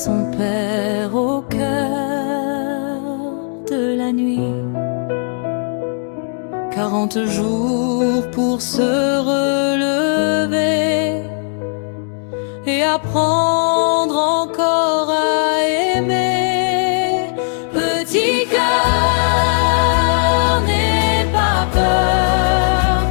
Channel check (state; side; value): silent; right; 64 dB below the other